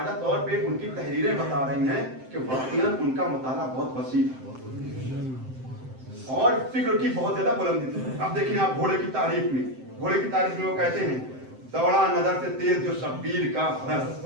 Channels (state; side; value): late; left; 7.7 ms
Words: طور پہ ان کی تحریریں بتا رہی ہیں کہ واقعاً ان کا مطالعہ بہت وسیع اور فکر کی بہت زیادہ بلندی تھی. اب دیکھیں آپ گھوڑے کی تعریف میں, گھوڑے کی تعریف میں وہ کہتے ہیں دوڑا نظر سے تیز جو شبیر کا فرس,